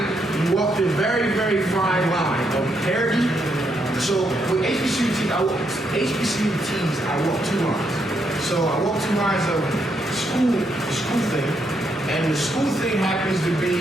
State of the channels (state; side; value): normal; both; correlation 0.78